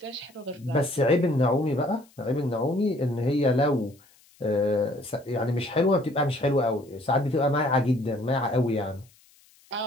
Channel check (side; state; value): left; noise; hiss, 30 dB below the sound